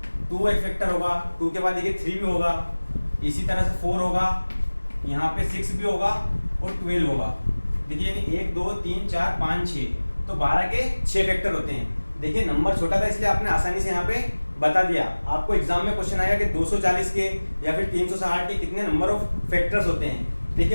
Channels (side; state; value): both; inverted; correlation -1.00